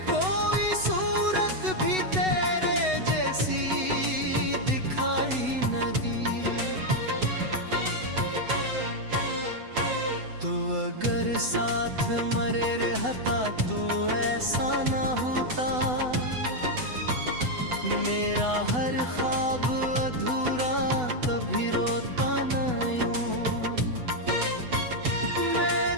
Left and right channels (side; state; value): left; late; 8.0 ms